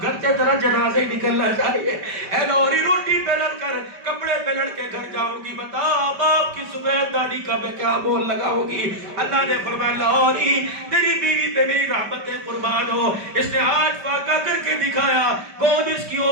گھر سے تیرا جنازہ ہی نکلنا چاہیے. اے لاہوری روٹی پہ لڑ کر کپڑے پہ لڑ کے گھر جاؤں گی, بتا باپ کی سفید داڑھی کا میں کیا مول لگاؤں گی. اللہ نے فرمایا لاہوری تیری بیوی پہ میری رحمت قربان ہو. اس نے آج فاقہ کر کے دکھایا, کون اس کی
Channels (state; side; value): late; left; 5.1 ms